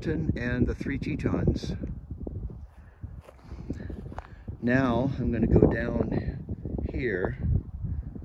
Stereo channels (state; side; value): identical; both; correlation 1.00